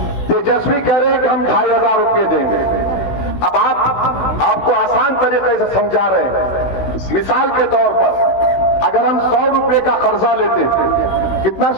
तेजस्वी कह रहे हैं कि हम 2,500 रुपये देंगे। अब आपको आसान तरीके से समझा रहे हैं। मिसाल के तौर पर अगर हम 100 रुपये का कर्जा लेते, कितना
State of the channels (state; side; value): late; right; 16 ms